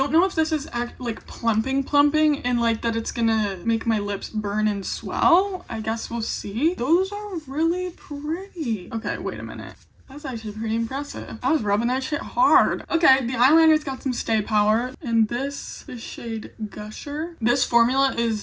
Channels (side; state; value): both; identical; correlation 1.00